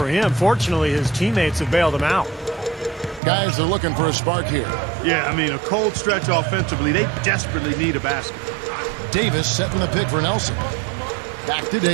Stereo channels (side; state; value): left; drops out; at 3.2 s